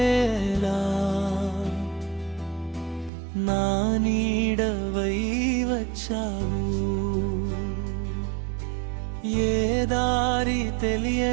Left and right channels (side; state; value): left; drops out; at 3.1 s